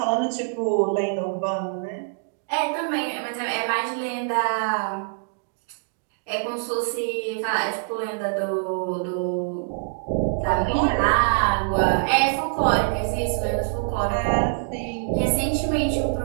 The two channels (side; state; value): left; silent; digital silence